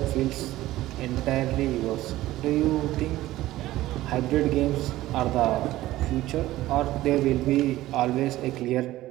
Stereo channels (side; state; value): left; quieter; 16.0 dB